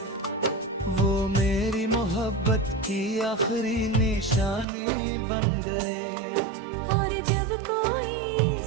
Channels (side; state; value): left; drops out; at 4.7 s